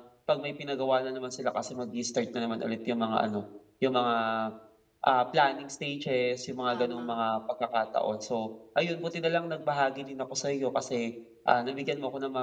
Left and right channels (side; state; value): both; identical; correlation 1.00